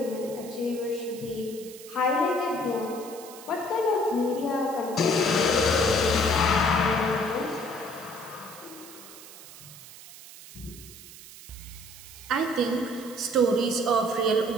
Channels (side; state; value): right; noise; hiss, 17 dB below the sound